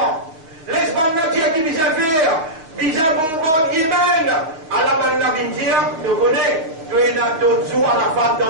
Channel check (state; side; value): late; left; 6.4 ms